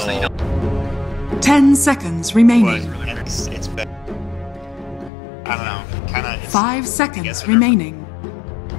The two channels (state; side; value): drops out; right; at 5.1 s